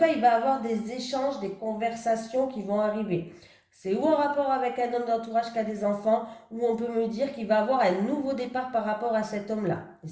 il va avoir des échanges, des conversations qui vont arriver. C'est ou en rapport avec un homme d'entourage qui a des enfants, ou on peut me dire qu'il va avoir un nouveau départ par rapport à cet homme-là, les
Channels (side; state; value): both; identical; correlation 1.00